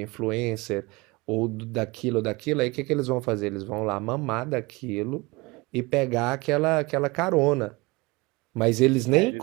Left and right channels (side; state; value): left; quieter; 24.3 dB